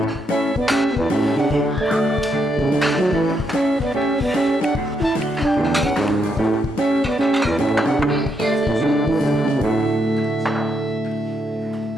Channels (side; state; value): both; normal; correlation 0.78